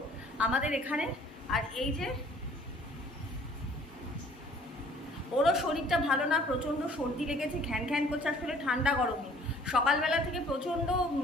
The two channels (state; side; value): normal; both; correlation 0.55